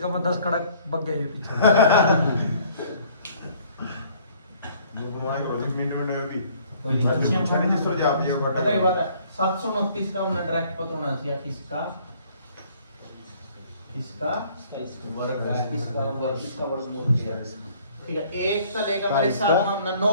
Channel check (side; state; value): both; inverted; correlation -0.58